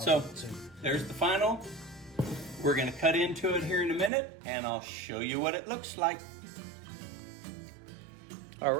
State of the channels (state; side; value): drops out; left; at 4.1 s